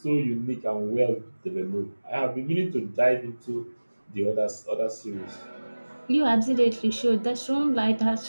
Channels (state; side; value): inverted; both; correlation -1.00